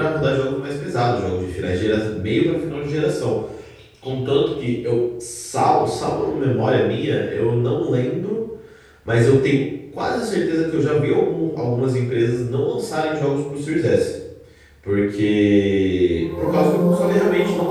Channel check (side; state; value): both; identical; correlation 1.00